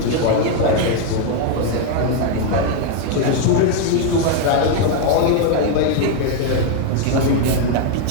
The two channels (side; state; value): both; different; correlation 0.01